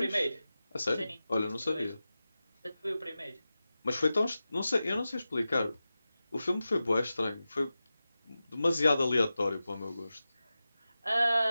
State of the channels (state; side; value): inverted; both; correlation -0.94